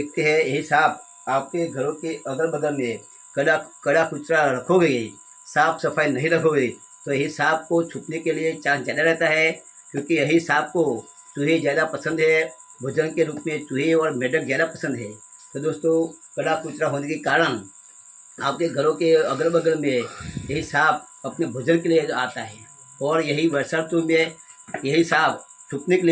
हैं यही सांप आपके घरों के अगल बगल में कड़ा कुचरा रखोगे, साफ सफाई नहीं रखोगे तो यही सांप को छुपने के लिए चांस ज़्यादा रहता है, क्योंकि यही सांप को चूहे ज़्यादा पसंद है। भोजन के रूप में चूहे और मेढक ज़्यादा पसंद है। तो दोस्तों कड़ा कुचरा होने के कारण आपके घरों के अगल बगल में यही सांप अपने भोजन के लिए आता है, और यही वर्षा ऋतु में यही सांप छुपने के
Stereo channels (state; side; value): identical; both; correlation 1.00